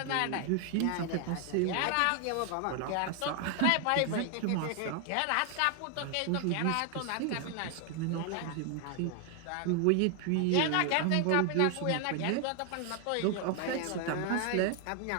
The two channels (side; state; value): both; different; correlation 0.00